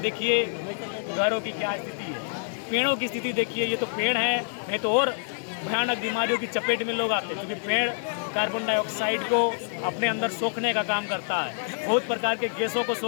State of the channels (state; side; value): silent; right; digital silence